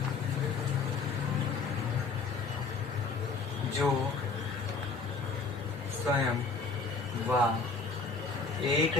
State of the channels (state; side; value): quieter; right; 4.5 dB